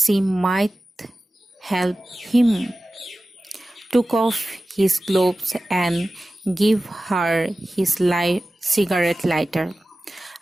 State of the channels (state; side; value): normal; both; correlation 0.95